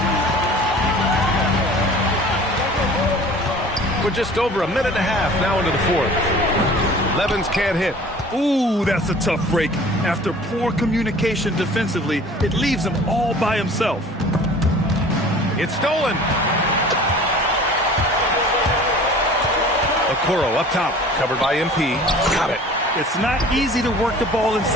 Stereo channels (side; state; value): both; normal; correlation 0.46